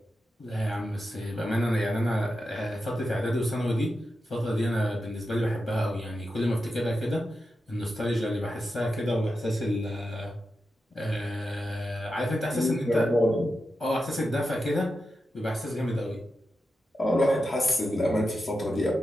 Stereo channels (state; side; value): normal; both; correlation 0.89